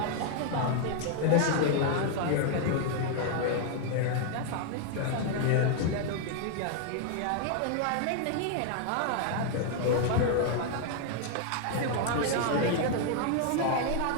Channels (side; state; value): both; different; correlation 0.00